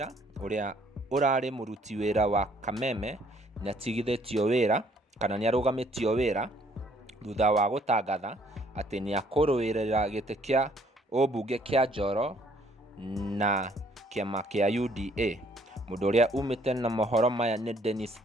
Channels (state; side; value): normal; both; correlation 0.63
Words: uria urari muruti wira wa Kameme ni atigithitio wira kana ni arugamitio wira thutha wa gutangatha ati ni akuruirira giti kia obunge kia Njoro na kiama kia UDA. Mundu uria umite na mohoro maya ni Dennis